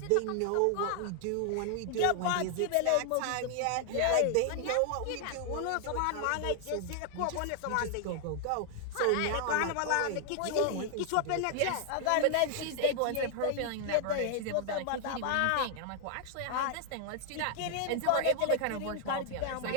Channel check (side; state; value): both; different; correlation 0.00